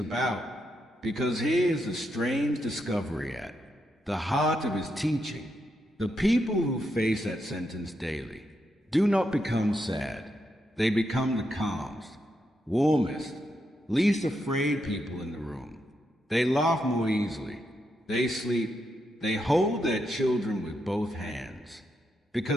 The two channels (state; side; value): normal; both; correlation 0.82